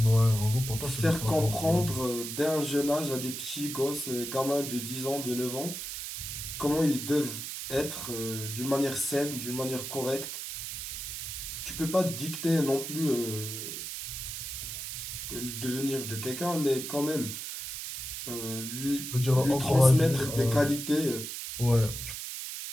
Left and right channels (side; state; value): right; noise; hiss, 6 dB below the sound